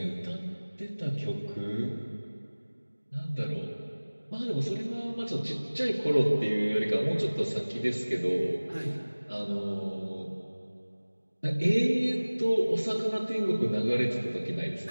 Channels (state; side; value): inverted; both; correlation -1.00